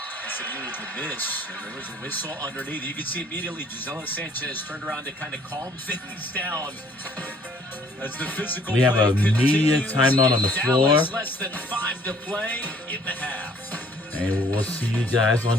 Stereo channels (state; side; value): normal; both; correlation 0.59